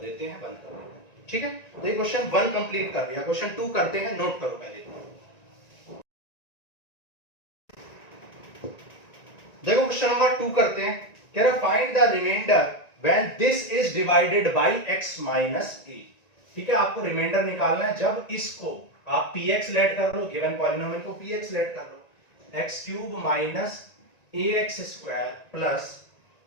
हैं, बंद कर देते हैं, ठीक है। तो ये क्वेश्चन 1 कंप्लीट कर दिया। क्वेश्चन 2 करते हैं, नोट करो पहले। देखो क्वेश्चन नंबर 2 करते हैं, कह रहा find the remainder when this is divided by x minus a, ठीक है। आपको रिमाइंडर निकालना है जब इसको आप px लेट कर लो, गिवन पॉलिनोमियल को px लेट कर लो, x cube minus ax square plus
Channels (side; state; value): right; late; 1.9 ms